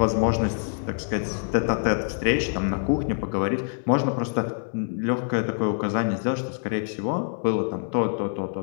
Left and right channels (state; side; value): silent; right; 61 dB below the other